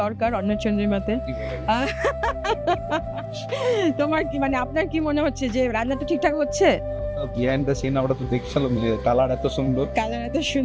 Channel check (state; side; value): identical; both; correlation 1.00